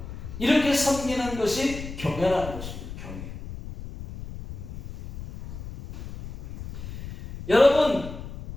이렇게 섬기는 것이 경외라는 것입니다. 경외. 여러분,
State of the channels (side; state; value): left; noise; rumble, 11 dB below the sound